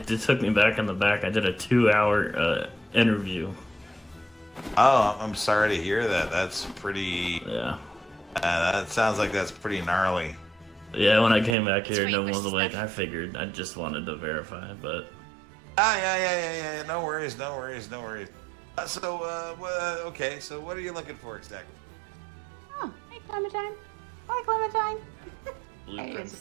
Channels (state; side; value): drops out; left; at 11.6 s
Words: took me back in the back. I did a 2-hour interview. Oh, I'm sorry to hear that. That's pretty. Yeah. That sounds like that's pretty gnarly. Yeah, when I came back here, It's no one was pretty awake. I figured I just wanted to verify, but Yeah. No worries. Okay. So, what are you looking for exactly? Oh, hey, Clementine. Hi, Clementine. blueprints